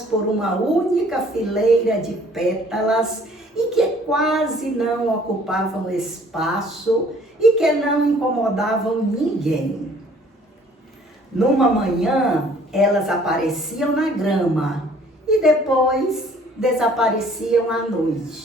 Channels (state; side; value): normal; both; correlation 0.56